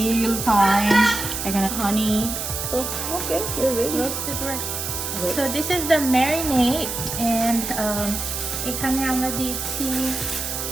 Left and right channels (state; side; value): noise; right; hiss, 4 dB below the sound